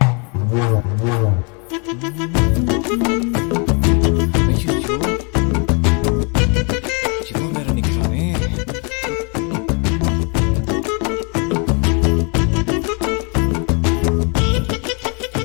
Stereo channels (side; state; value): right; quieter; 34.7 dB